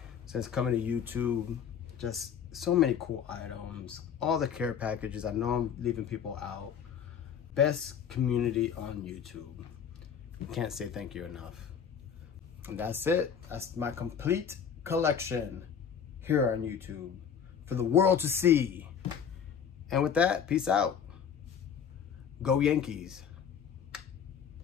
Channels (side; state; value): right; quieter; 7.7 dB